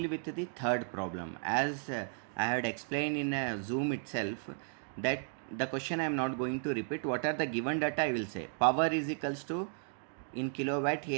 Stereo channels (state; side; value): silent; left; 55 dB below the other